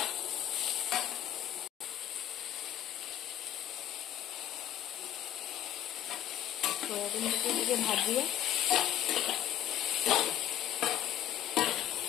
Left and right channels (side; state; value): right; quieter; 11.6 dB